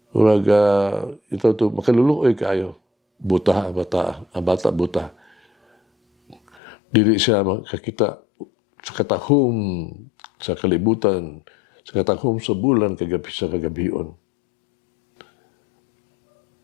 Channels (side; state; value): right; drops out; at 6.6 s